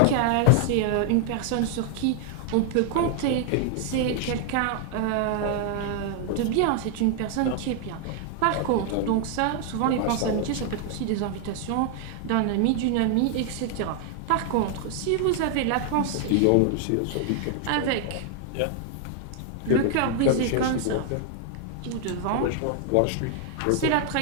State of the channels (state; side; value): different; both; correlation 0.00